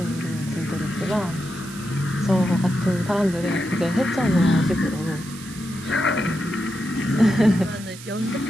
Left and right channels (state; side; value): noise; right; hiss, 15 dB below the sound